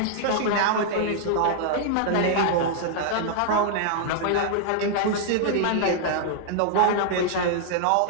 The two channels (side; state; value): both; different; correlation -0.01